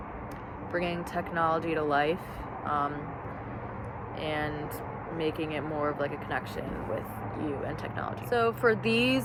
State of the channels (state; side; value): identical; both; correlation 1.00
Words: bringing technology to life, and making it more of like a connection with you and technology. So for